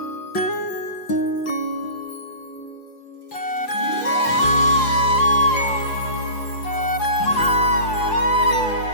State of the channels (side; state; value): right; late; 5.8 ms